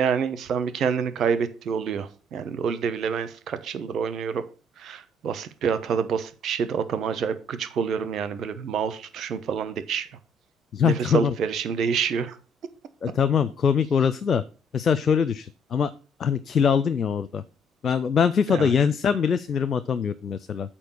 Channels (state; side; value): normal; both; correlation 0.64